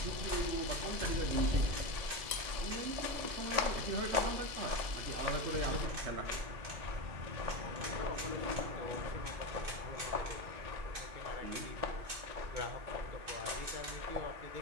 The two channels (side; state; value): left; late; 2.6 ms